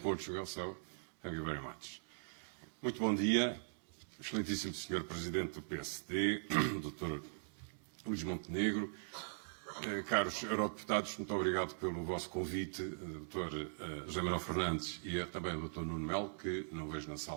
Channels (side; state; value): left; silent; digital silence